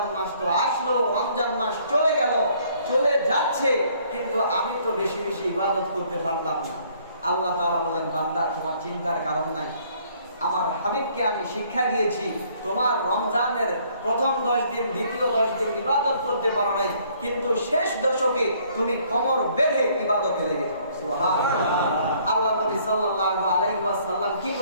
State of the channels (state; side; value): inverted; both; correlation -0.62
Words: মাস তো আসলো, রমজান মাস চলে গেল, চলে যাচ্ছে, কিন্তু আমি তো বেশি বেশি ইবাদত করতে পারলাম না। আল্লাহ তাআলা বলেন, বান্দা তোমার চিন্তার কারণ নাই, আমার হাবিবকে আমি শিক্ষা দিয়েছি, তোমার রমজানের প্রথম 10 দিন, দ্বিতীয় 10 দিন ইবাদত করতে পারো নাই, কিন্তু শেষ দশকে তুমি কোমর বেঁধে ইবাদতে লেগে যাও। সুবহানাল্লাহ। আল্লাহ নবী সাল্লাল্লাহু আলাইহি ওয়াসাল্লাম কি